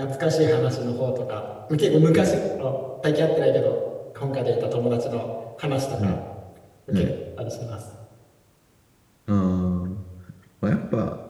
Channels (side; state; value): both; identical; correlation 1.00